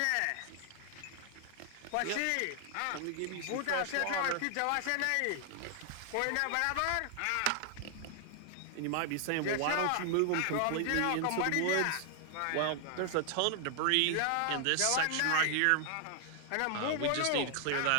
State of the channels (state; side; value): different; both; correlation 0.00